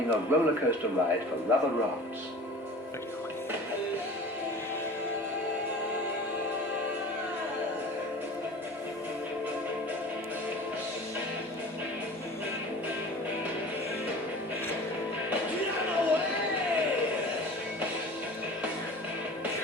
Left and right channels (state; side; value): normal; both; correlation 0.40